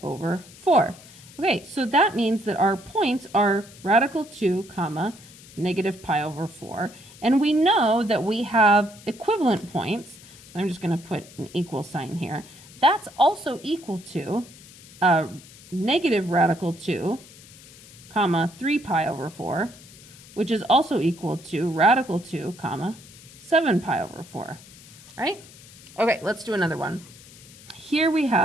over 4. Okay, so that means that our points are radical 2, comma, negative pi over 4. And we know that we have equivalent points. I'm just going to put an equal sign here. That's also equal to negative radical 2, comma, 3 pi over 4, which is also equal to radical 2, comma, 7 pi over 4. Right? Okay, let's do another one. Here we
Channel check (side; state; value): left; noise; hiss, 21 dB below the sound